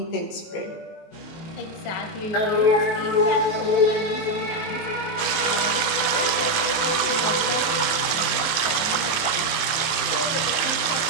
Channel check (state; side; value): late; right; 18 ms